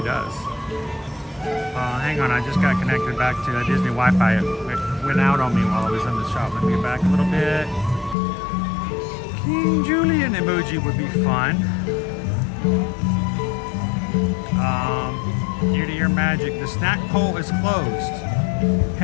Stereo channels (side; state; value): right; drops out; at 8.2 s